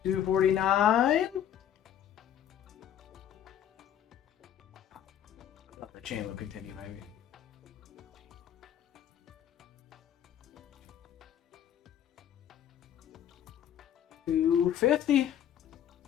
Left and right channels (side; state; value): right; quieter; 10.1 dB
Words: 249. I thought the chain will continue, maybe. $250.